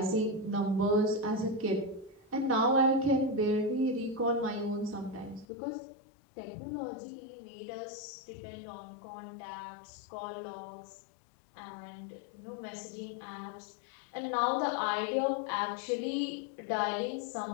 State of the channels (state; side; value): drops out; right; at 5.5 s